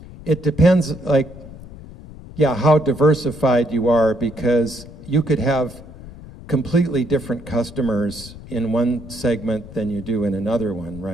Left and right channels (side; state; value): left; noise; rumble, 16 dB below the sound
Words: It depends, how diversified you are, because you could have completely different customers in one segment than you do in another one,